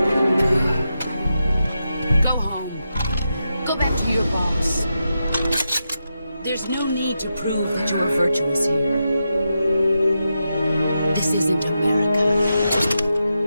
Go home. Go back to your boss. There's no need to prove that you are virtuous here. This isn't America.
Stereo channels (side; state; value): both; inverted; correlation -0.87